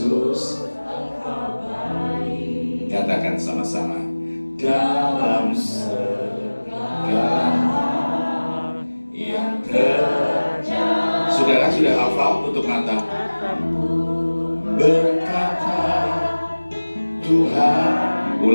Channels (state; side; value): inverted; both; correlation -1.00